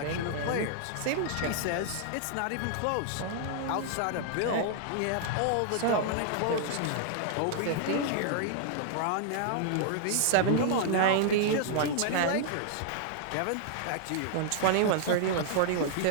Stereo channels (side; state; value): both; different; correlation -0.01